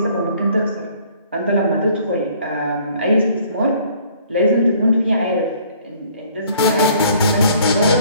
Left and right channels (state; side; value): inverted; both; correlation -0.58